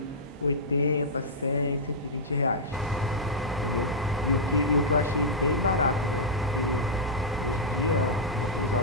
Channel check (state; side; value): normal; both; correlation -0.10